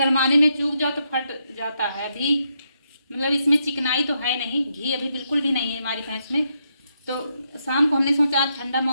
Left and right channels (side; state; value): both; inverted; correlation -0.80